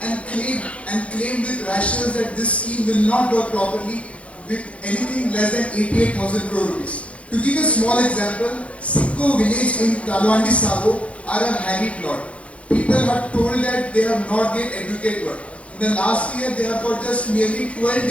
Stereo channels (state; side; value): late; right; 0.063 ms